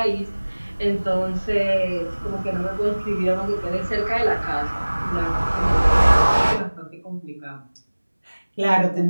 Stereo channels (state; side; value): inverted; both; correlation -1.00